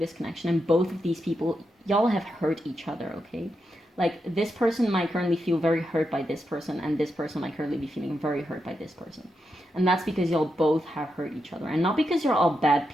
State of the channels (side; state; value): both; normal; correlation 0.85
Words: connection, and both of these people, y'all have hurt each other, okay? Like, this person might currently feel very hurt by this person, and this person might currently be feeling very hurt by this person. And that's because y'all both have hurt each other, and not because you're all bad